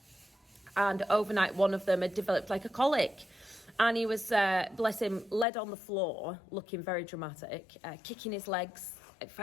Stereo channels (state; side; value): drops out; right; at 5.5 s